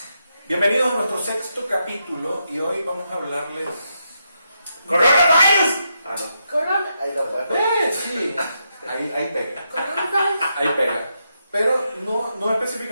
Bienvenidos a nuestro sexto capítulo y hoy vamos a hablarles... ¡Coronavirus! Ah, no. Corona. Ahí lo puedes. Sí, ahí pega. Ahí pega. Pero no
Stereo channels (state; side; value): inverted; both; correlation -0.82